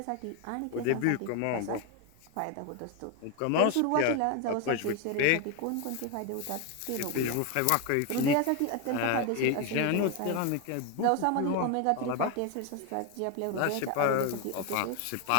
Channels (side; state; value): both; different; correlation 0.01